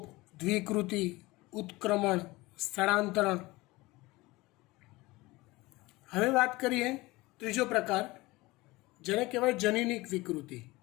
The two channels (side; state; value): right; quieter; 21.1 dB